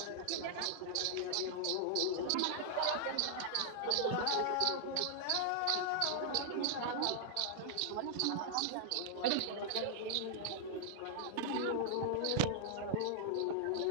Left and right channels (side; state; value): both; different; correlation -0.01